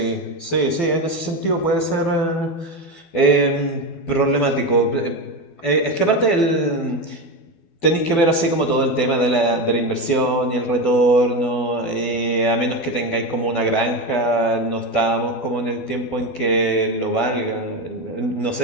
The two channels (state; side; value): late; right; 12 ms